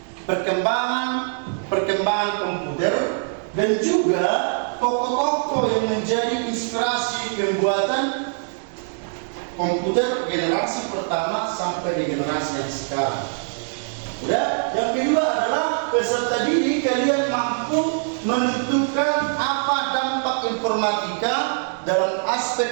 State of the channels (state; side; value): silent; left; digital silence